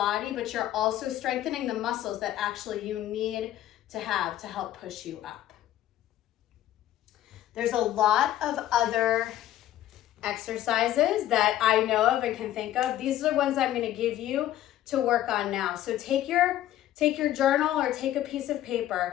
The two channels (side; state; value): right; quieter; 13.0 dB